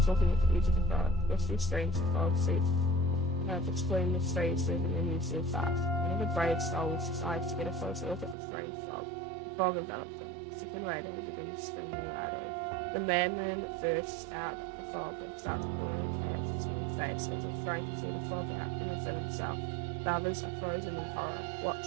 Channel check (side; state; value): left; drops out; at 8.3 s